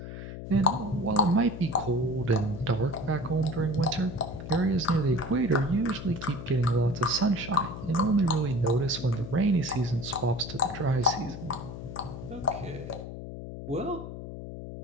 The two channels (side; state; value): left; noise; hum, 10 dB below the sound